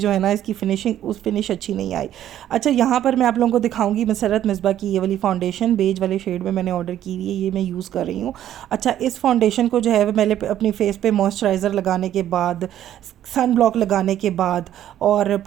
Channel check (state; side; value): quieter; left; 11.6 dB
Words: है ना इसकी फिनिश अच्छी नहीं आई। अच्छा, यहाँ पर मैं आप लोगों को दिखाऊंगी मसरत मिसबा की ये वाली फाउंडेशन बेज वाले शेड में मैंने ऑर्डर की हुई है, ये मैं यूज़ कर रही हूँ। अच्छा, इस फाउंडेशन को जो है मैंने अपनी फेस पे मॉइस्चराइज़र लगाने के बाद, सन ब्लॉक लगाने के बाद, और